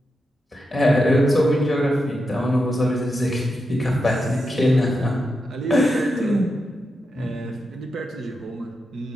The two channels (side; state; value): both; normal; correlation 0.87